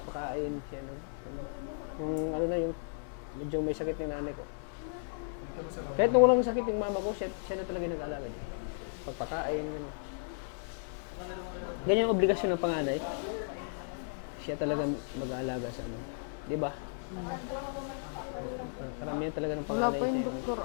siya ano, yung ano na, yung medyo may sakit ng nanay ko. Kahit nung walang sakit yung mama ko, siya na talaga nag-aalaga din. Pagpakain, gano'n. Ganyan ang obligasyon ng panganay. Siya talaga mag-aalaga sa ano. Di ba? Karamihan talaga ng panganay siya yung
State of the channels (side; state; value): right; silent; 55 dB below the other